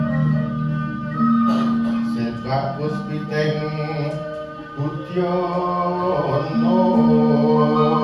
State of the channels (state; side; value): identical; both; correlation 1.00